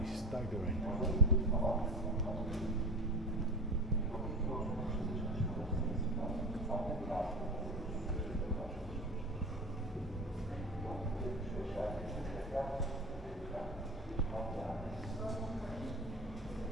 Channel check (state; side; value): normal; both; correlation 0.31